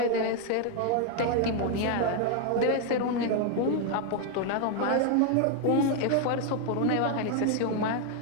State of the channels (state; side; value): different; both; correlation 0.00